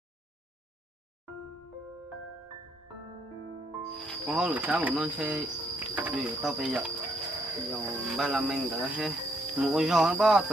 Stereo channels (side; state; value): both; normal; correlation 0.72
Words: con hổ lửa sáng một non xe vì tao bây giờ giờ ba là mình đã hết một con giò nó bao